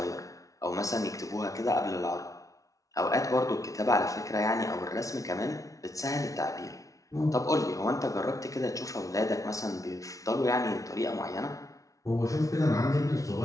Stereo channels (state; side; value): late; right; 0.17 ms